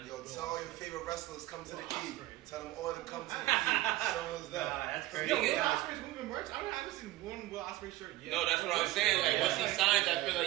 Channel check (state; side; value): quieter; left; 17.0 dB